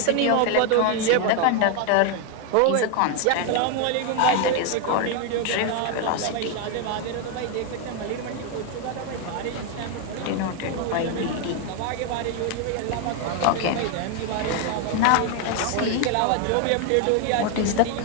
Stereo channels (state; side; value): different; both; correlation 0.01